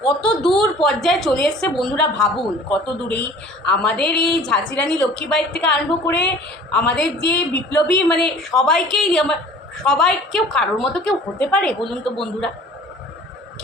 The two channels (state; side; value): normal; both; correlation 0.48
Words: কত দূর পর্যায়ে চলে এসছে বন্ধুরা, ভাবুন কত দূরেই আমাদের এই ঝাঁসি রানী লক্ষ্মীবাঈর থেকে আরম্ভ করে আমাদের যে বিপ্লবী, মানে সবাইকেই, সবাই কেউ কারোর মতো কেউ হতে পারে বলুন তো বন্ধুরা?